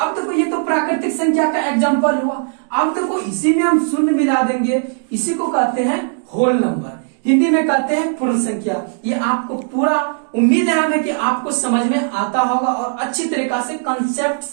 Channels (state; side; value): silent; left; digital silence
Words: अब देखो ये तो प्राकृतिक संख्या का एग्जाम्पल हुआ। अब देखो इसी में हम शून्य मिला देंगे, इसी को कहते हैं होल नंबर, हिंदी में कहते हैं पूर्ण संख्या। ये आपको पूरा उम्मीद है हमें कि आपको समझ में आता होगा और अच्छी तरीका से कंसेप्ट